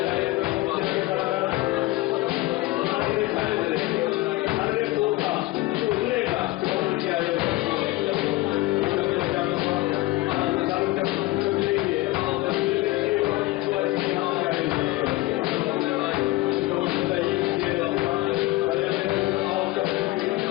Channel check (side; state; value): right; quieter; 18.8 dB